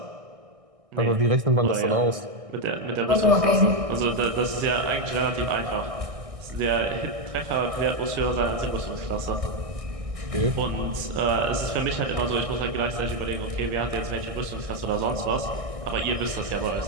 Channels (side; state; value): left; late; 1.6 ms